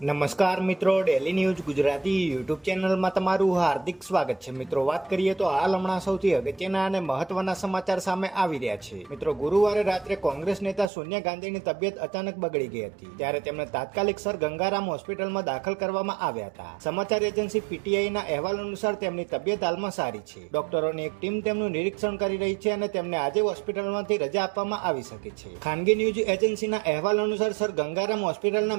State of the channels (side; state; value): left; drops out; at 10.9 s